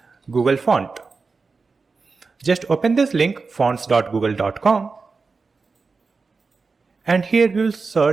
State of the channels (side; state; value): left; quieter; 4.4 dB